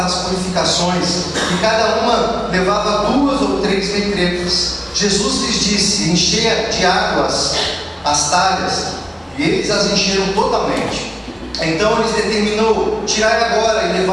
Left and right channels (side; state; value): both; identical; correlation 1.00